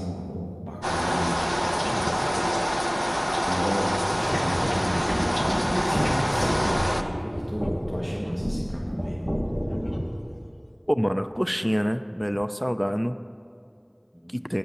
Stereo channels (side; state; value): both; identical; correlation 1.00